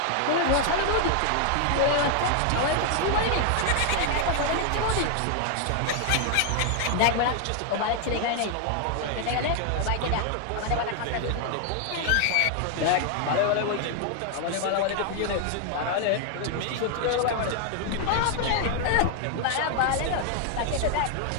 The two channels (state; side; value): different; both; correlation 0.00